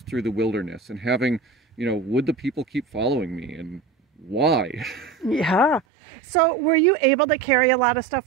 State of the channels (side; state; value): left; drops out; at 5.8 s